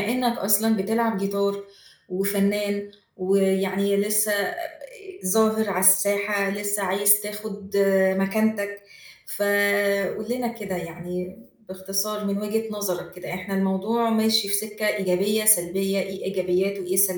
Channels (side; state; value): both; identical; correlation 1.00